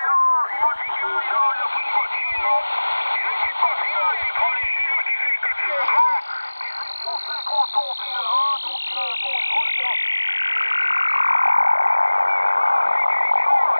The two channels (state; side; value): inverted; both; correlation -1.00